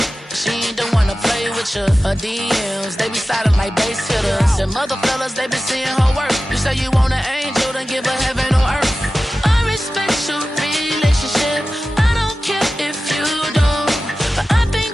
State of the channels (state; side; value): normal; both; correlation 0.95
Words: She ain't the one to play with picture. Her DMs, they be silent like bass hitters. Them other fellas, they be seeing her work. You say you want an angel, then give her heaven on earth. I respect your relationship. I don't care if you don't. But I